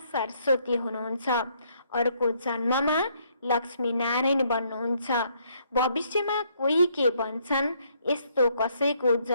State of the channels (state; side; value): inverted; both; correlation -0.69